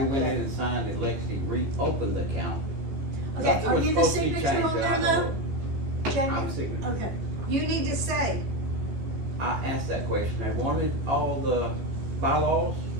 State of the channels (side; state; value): left; late; 15 ms